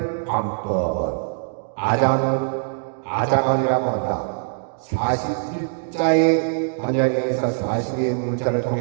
관법은 아자간이라고 한다. 41자의 반야에서 42의 문자를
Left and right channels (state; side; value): silent; left; digital silence